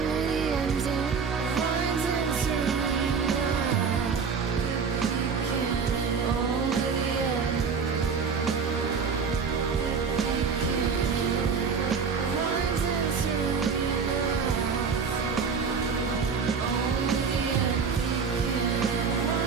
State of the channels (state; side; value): quieter; left; 5.7 dB